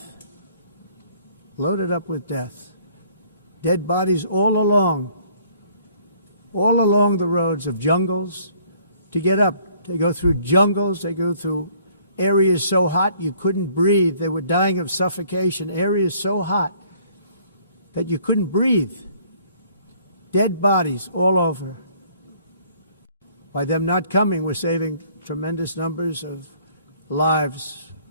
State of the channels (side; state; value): both; inverted; correlation -0.60